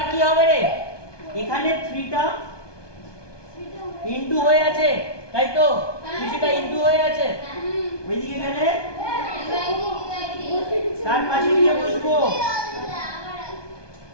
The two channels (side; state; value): right; late; 1.2 ms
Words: কি হবে রে, এখানে 3 টা ইনটু হয়ে আছে, তাই তো? কিছুটা ইনটু হয়ে আছে, ওইদিকে গেলে তার পাশে গিয়ে বসবো।